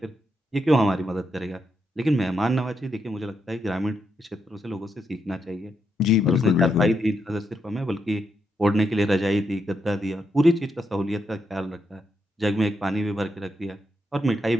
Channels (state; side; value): normal; both; correlation 0.81